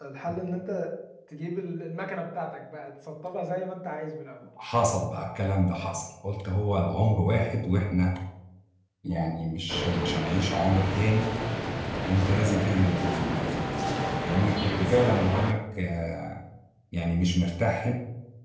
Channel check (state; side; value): identical; both; correlation 1.00